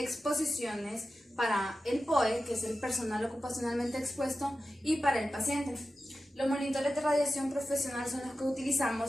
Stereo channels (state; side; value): normal; both; correlation 0.93